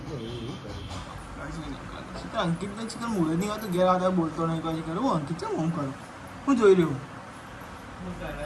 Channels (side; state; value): both; identical; correlation 1.00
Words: અંકિત ને ચિકન મૂળે નહીં આવતું ઘેર આવતા બોલતો નહીં કહે કરું હું અંકિત છે હું કરું હું જોઈ રહ્યું